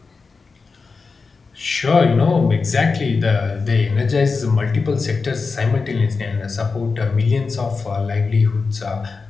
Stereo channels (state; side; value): quieter; right; 4.5 dB